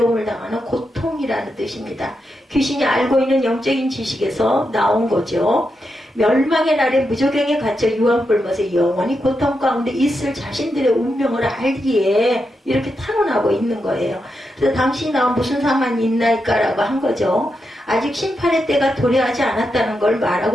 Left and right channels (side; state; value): both; normal; correlation 0.85